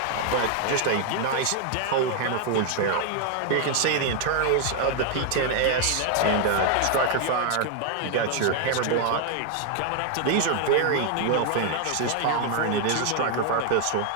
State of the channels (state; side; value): different; both; correlation 0.00